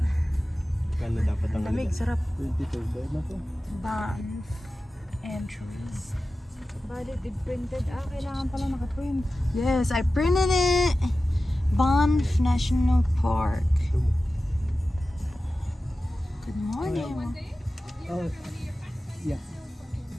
Kano dapat ang Lamig, sarap. 22 bayad na to. Banff entries. Valid if printed. Kailangan pala naka-print. Yes, I printed it. Banff National Park. Good morning. Oh, yeah.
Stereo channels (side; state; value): both; normal; correlation 0.94